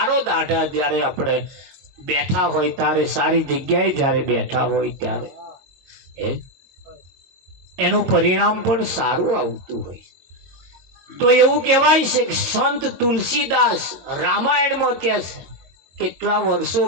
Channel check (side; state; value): left; late; 22 ms